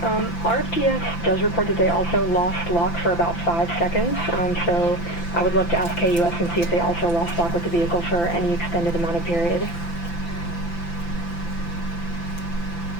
RFTS does report that they also lost lock for about 5 seconds, so I would love to ask KUS and see if they also lost lock with the vehicle for any extended amount of period.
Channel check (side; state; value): right; late; 5.9 ms